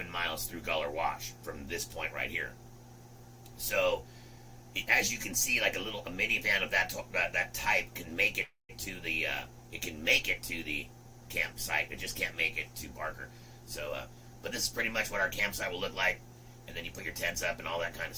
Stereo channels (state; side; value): identical; both; correlation 1.00